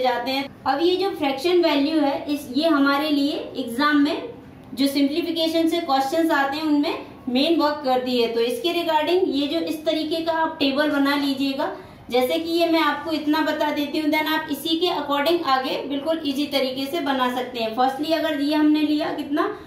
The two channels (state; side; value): identical; both; correlation 1.00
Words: हैं। अब ये जो फ्रैक्शन वैल्यू है ये हमारे लिए एग्जाम में जो सिंप्लीफिकेशन से क्वेश्चंस आते हैं उनमें मेन वर्क करती है। तो इसके रिगार्डिंग ये जो इस तरीके का आप टेबल बना लीजिएगा, जैसे कि ये मैं आपको इतना बता देती हूँ, देन आप इसी के अकॉर्डिंग आगे बिल्कुल इजी तरीके से बना सकते हैं। फर्स्टली अगर ये हमने लिया कितना,